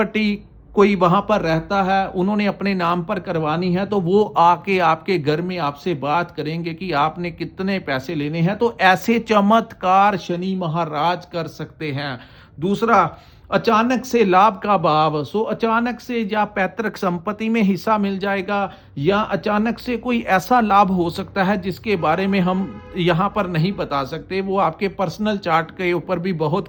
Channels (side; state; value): both; identical; correlation 1.00